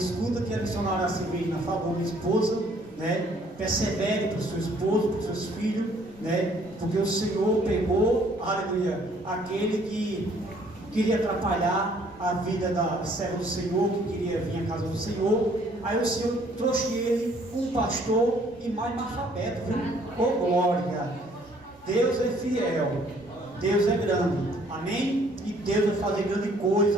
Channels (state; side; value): noise; right; rumble, 27 dB below the sound